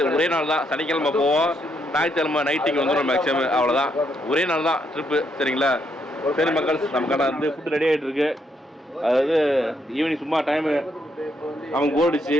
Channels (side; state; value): both; normal; correlation 0.75